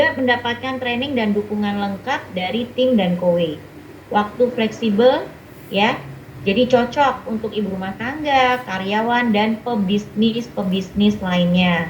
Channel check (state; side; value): identical; both; correlation 1.00